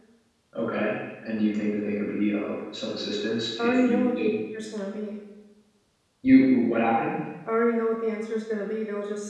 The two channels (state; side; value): identical; both; correlation 1.00